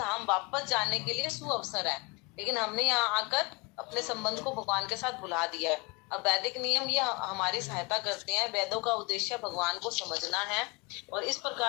वापस जाने के लिए सुअवसर है, लेकिन हमने यहाँ आकर अपने संबंध को भगवान के साथ भुला दिया है। अब वैदिक नियम ये हमारी सहायता करते हैं। वेदों का उद्देश्य भगवान को समझना है और इस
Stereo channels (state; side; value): quieter; right; 28.0 dB